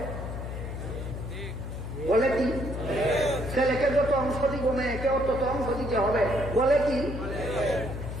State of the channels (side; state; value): left; noise; hum, 6 dB below the sound